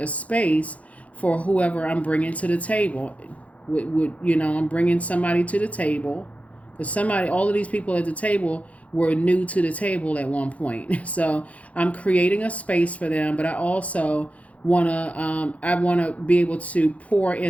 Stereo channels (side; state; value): right; late; 0.066 ms